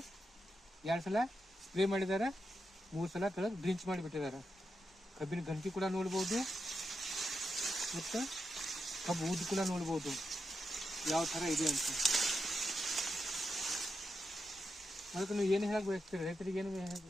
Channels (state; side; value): normal; both; correlation 0.86